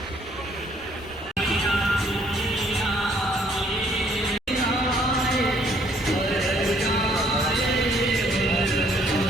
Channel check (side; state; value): both; normal; correlation 0.63